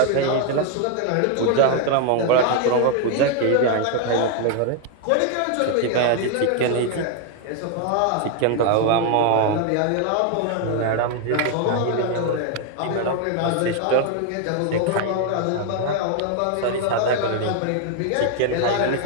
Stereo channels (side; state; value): both; different; correlation 0.00